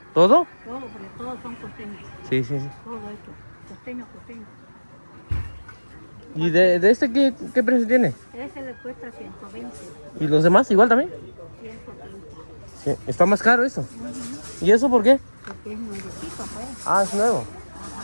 ¿Todo? Todo, porque todos son costeños. Sí, sí, sí. Todo esto. Costeño, costeño. ¿Y de este qué precio tiene? Ese le cuesta 120. ¿Y los demás igual también? 130. Sí, está más caro eso. ¿Y eso por qué? Porque es nuevecito, pues. Ah, es nuevo.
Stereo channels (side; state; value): both; inverted; correlation -1.00